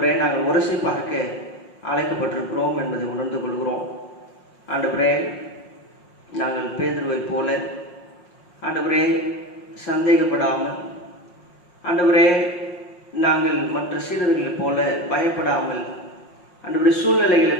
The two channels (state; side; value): late; right; 5.6 ms